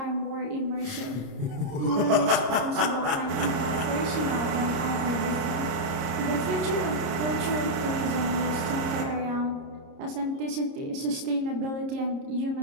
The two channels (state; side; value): late; left; 30 ms